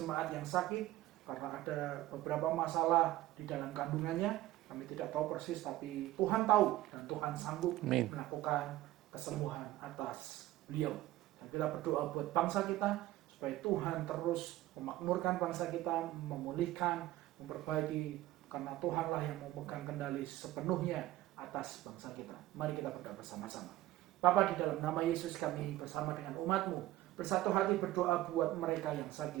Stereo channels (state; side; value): quieter; left; 15.7 dB